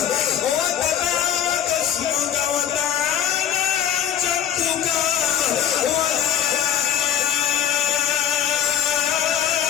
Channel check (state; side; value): quieter; right; 9.8 dB